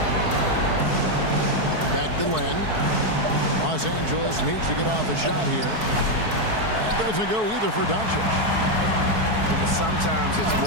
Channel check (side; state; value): left; late; 4.6 ms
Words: Back to Len. Los Angeles needs to get off a shot here. That doesn't go either for Doncic. But sometimes it's